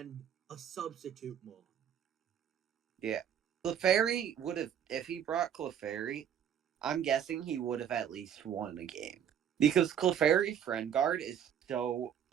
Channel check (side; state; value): left; quieter; 9.1 dB